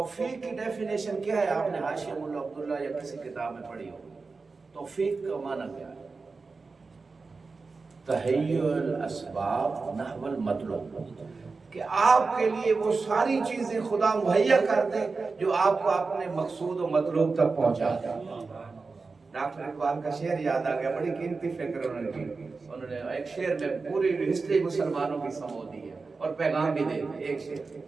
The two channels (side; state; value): left; quieter; 4.2 dB